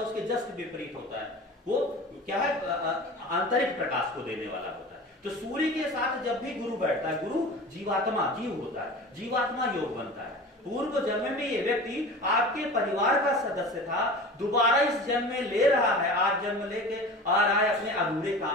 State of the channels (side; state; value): both; normal; correlation 0.36